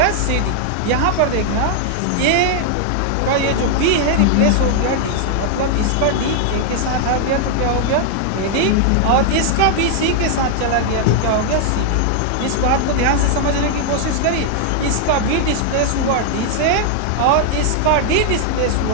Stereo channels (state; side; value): different; both; correlation 0.00